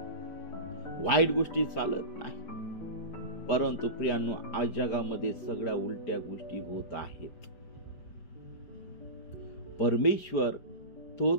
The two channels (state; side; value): late; right; 4.9 ms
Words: वाईट गोष्टी चालत नाही. परंतु प्रियांनो, आज जगामध्ये सगळ्या उलट्या गोष्टी होत आहेत. परमेश्वर तो